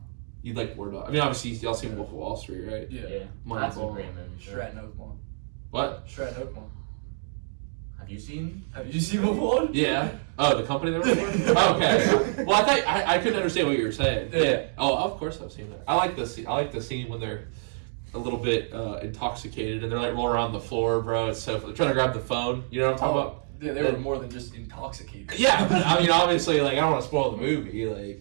You'd like War Dogs. I mean, obviously y'all seen Wolf of Wall Street, right? Yeah. Yeah. Moneyball. That's a great movie. Stratton Oakmont. What? Stratton Oakmont. Have you seen? Have you seen Wolf? Yeah. Oh, the company that we're oh, okay. Well, I thought I couldn't understand what you were saying. Yeah. Oh, of course I've seen that. I like the scene. I like the scene when they're a little bit intoxicated and they're like rolling around the floor, bro. It's so they're trying to grab the phone. You know what I'm talking about? Yeah, they were more than just intoxicated. Yeah, but I mean, obviously, like I don't want to spoil the movie.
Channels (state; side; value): silent; left; digital silence